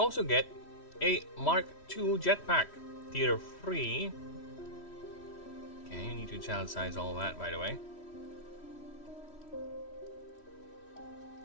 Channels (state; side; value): late; right; 3.1 ms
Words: also get a Mark II jetpack, tier 3. Okay, you need to child size all that, by the way.